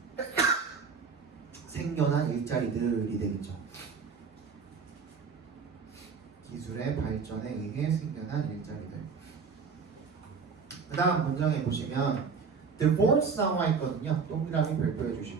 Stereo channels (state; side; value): quieter; left; 5.4 dB